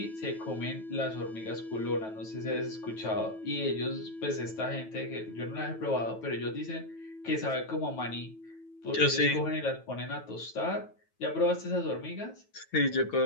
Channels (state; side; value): late; right; 9.2 ms